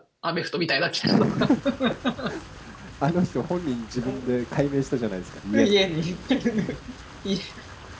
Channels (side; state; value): both; identical; correlation 1.00